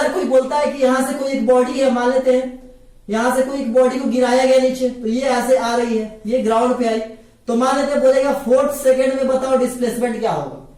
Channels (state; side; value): identical; both; correlation 1.00